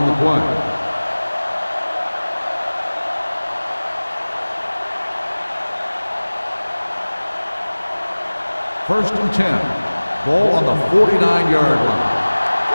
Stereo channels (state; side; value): inverted; both; correlation -1.00